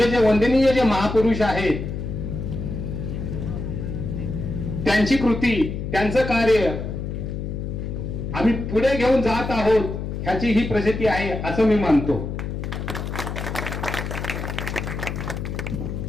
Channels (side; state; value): left; noise; hum, 5 dB below the sound